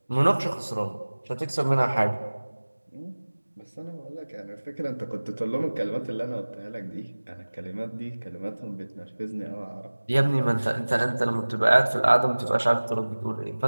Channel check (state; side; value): inverted; both; correlation -1.00